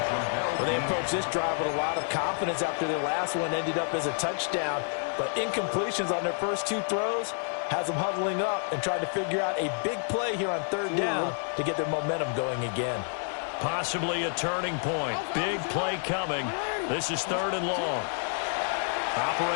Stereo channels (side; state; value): right; silent; 58 dB below the other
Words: Well, they approached this drive with a lot of confidence after their last one ended up as a touchdown. But incompletions on their first 2 throws has them huddling up and trying to figure out a big play here on 3rd down to get their momentum going again. Possibly a turning point. Big play coming. This is 3rd and long.